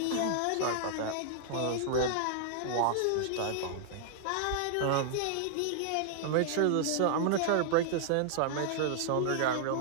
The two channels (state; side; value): different; both; correlation -0.01